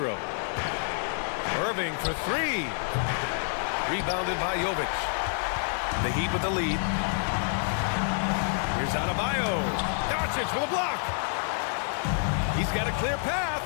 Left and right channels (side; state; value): right; silent; 59 dB below the other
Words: Irving for 3. Rebounded by Jovic. The Heat with the lead. Here's Adebayo. Doncic with a block. He's got a clear path.